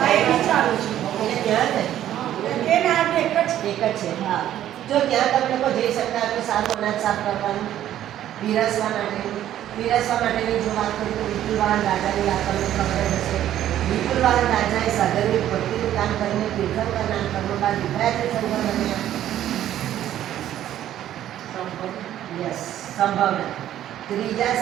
એક જ છે. હા, જો ત્યાં તમે લોકો જઈ શકતા તો સારું અનાજ સાફ કરવાનું, પીરસવા માટેની જો વાત કરીએ તો વિપુલવાહન રાજાની આપણને ખબર હશે. વિપુલવાહન રાજાએ સાધર્મિક ભક્તિનું કામ કરીને તીર્થંકર નામ કર્મ બાદ વિભ્રાય તીર્થંકર બન્યા. સંભાવના ત્રીજા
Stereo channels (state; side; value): quieter; left; 11.9 dB